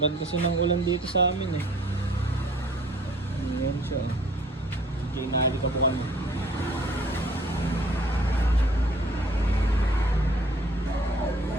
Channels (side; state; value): both; normal; correlation 0.56